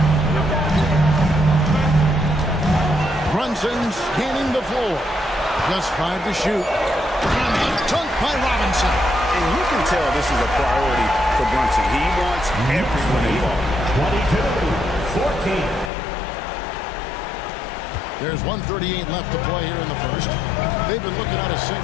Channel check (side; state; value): right; drops out; at 15.9 s